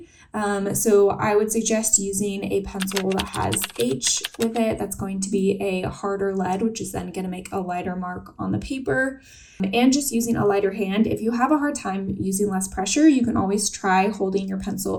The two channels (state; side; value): identical; both; correlation 1.00